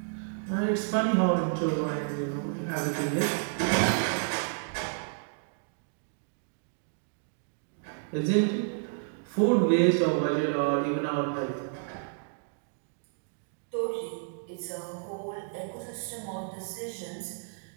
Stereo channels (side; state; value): left; silent; digital silence